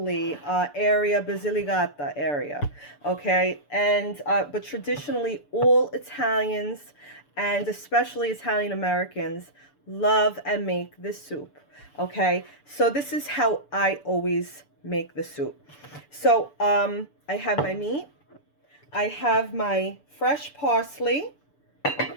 area, Basilicata area. Okay, and but traditionally all Italians and especially Italian Americans love and make this soup. Okay, so this is how I always make the soup. So I have my meat, I have my fresh parsley,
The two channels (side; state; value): right; late; 6.9 ms